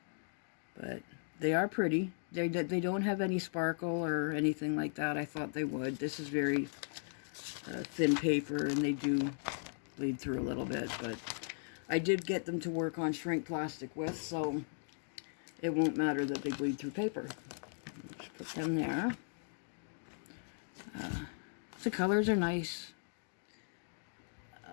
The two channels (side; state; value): right; silent; digital silence